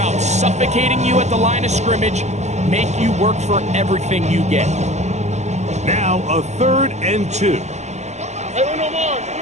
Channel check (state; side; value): late; left; 0.33 ms